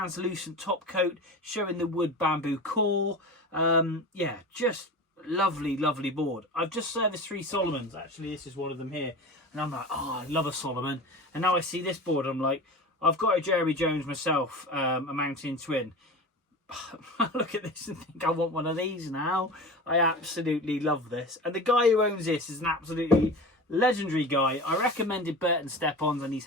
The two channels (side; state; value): both; normal; correlation 0.32